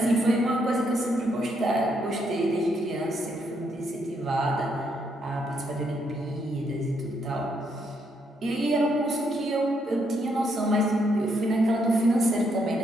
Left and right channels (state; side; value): normal; both; correlation 0.75